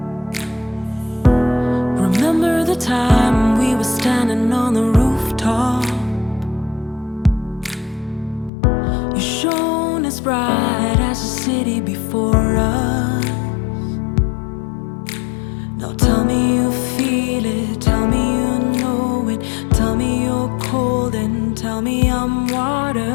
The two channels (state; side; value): drops out; right; at 8.5 s